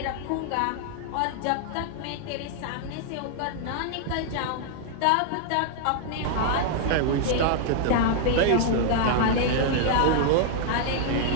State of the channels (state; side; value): different; both; correlation 0.00